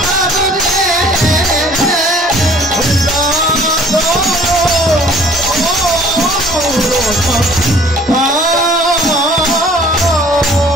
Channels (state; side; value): normal; both; correlation 0.53